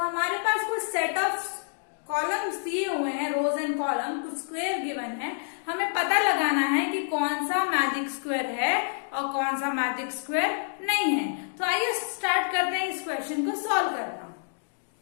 पास कुछ सेट ऑफ कॉलम्स दिए हुए हैं, रोज एंड कॉलम, कुछ स्क्वायर गिवन है। हमें पता लगाना है कि कौन सा मैजिक स्क्वायर है और कौन सा मैजिक स्क्वायर नहीं है। तो आइए स्टार्ट करते हैं इस क्वेश्चन को सॉल्व करना।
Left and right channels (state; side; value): silent; right; digital silence